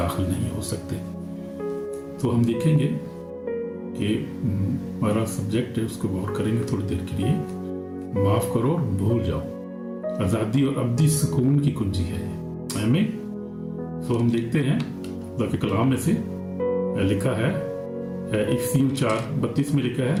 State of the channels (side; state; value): both; identical; correlation 1.00